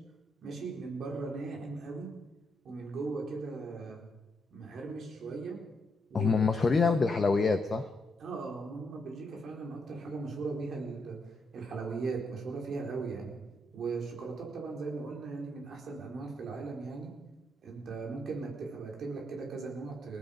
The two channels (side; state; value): both; normal; correlation 0.78